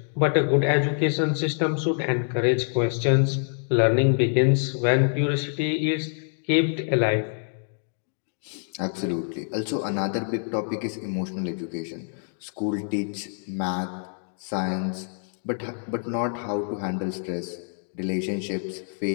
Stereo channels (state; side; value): silent; right; digital silence